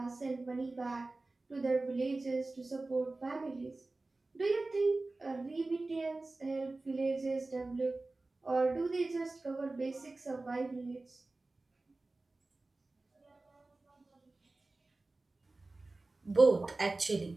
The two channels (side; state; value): left; quieter; 3.2 dB